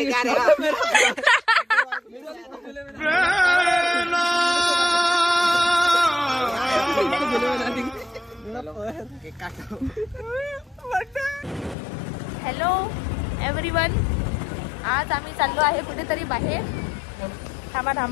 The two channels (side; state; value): right; drops out; at 11.8 s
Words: हॅलो एव्हरीवन, आज आम्ही चाललो आहे कुठेतरी बाहेर. थांबा